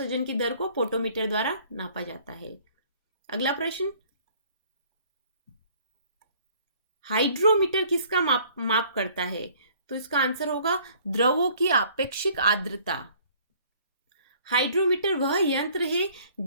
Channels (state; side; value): inverted; both; correlation -0.56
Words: की दर को पोटोमीटर द्वारा नापा जाता है। अगला प्रश्न, हाइड्रोमीटर किसका माप करता है? तो इसका आंसर होगा द्रवों की आपेक्षिक आर्द्रता। हाइड्रोमीटर वह यंत्र है